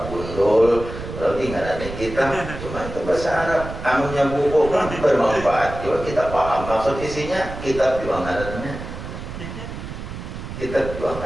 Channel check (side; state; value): right; noise; rumble, 9 dB below the sound